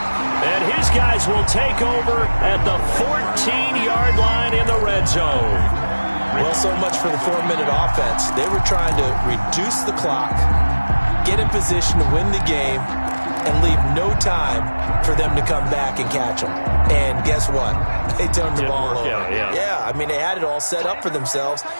And his guys will take over at the 14-yard line in the red zone. Well, so much for the 4-minute offense. They were trying to reduce the clock, get in position to win the game, and leave no time for them to come back and catch them. And guess what? They turned the ball over. Yeah, I mean, they had it all set up for themselves,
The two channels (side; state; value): both; inverted; correlation -1.00